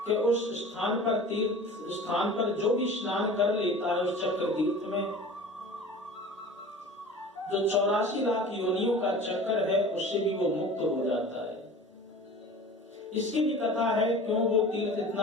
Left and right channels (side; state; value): both; normal; correlation 0.40